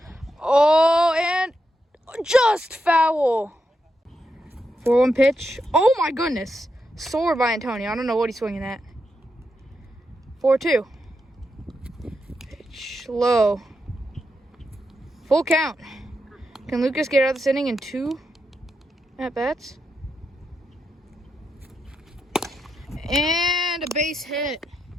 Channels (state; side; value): normal; both; correlation 0.84